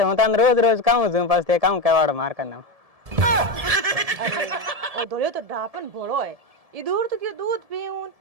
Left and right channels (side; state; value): left; late; 1.7 ms